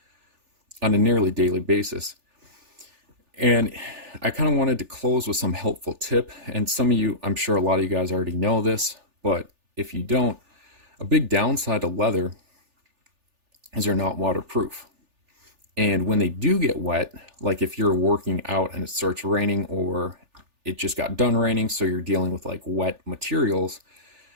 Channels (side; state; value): left; late; 3.4 ms